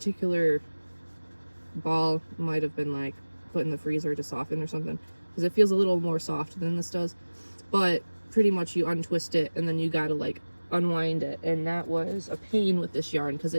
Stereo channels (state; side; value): inverted; both; correlation -1.00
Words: ball might have been like put in the freezer to soften or something, because it feels a little more soft than this does. But pretty much you untwist it and then you gotta like unwind it, and that was a pain with this yarn, because